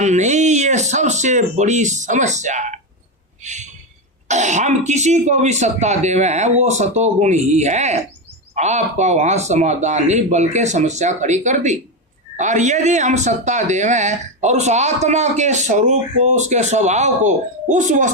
नहीं, ये सबसे बड़ी समस्या है। हम किसी को भी सत्ता देवे हैं वो सतोगुण ही है, आपका वहां समाधान नहीं बल्कि समस्या खड़ी कर दी। और यदि हम सत्ता देवें और उस आत्मा के स्वरूप को, उसके स्वभाव को उस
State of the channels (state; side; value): normal; both; correlation 0.11